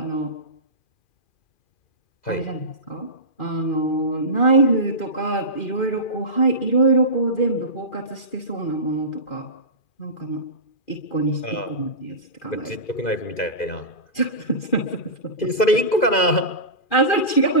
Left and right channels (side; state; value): right; late; 2.4 ms